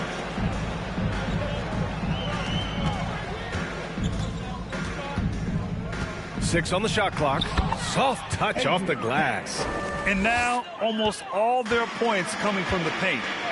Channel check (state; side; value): identical; both; correlation 1.00